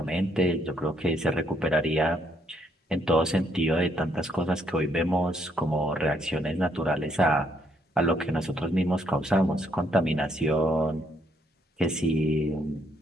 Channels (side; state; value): both; normal; correlation 0.72